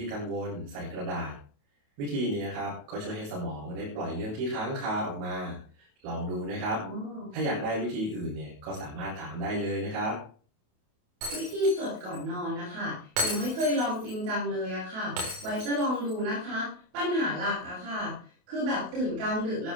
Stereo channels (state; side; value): late; left; 28 ms